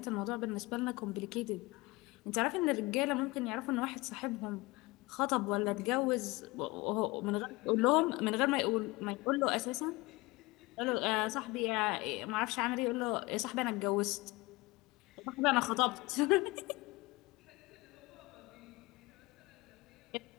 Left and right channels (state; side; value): quieter; right; 22.5 dB